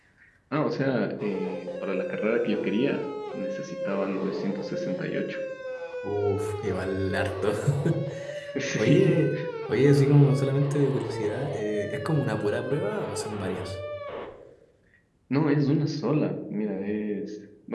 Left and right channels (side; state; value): both; identical; correlation 1.00